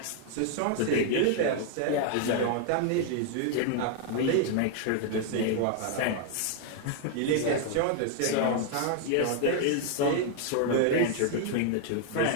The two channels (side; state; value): both; different; correlation 0.00